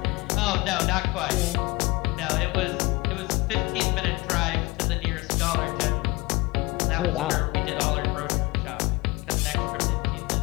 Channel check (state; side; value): quieter; right; 23.1 dB